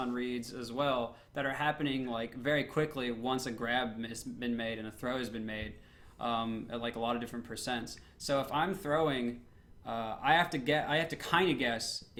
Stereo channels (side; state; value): both; identical; correlation 1.00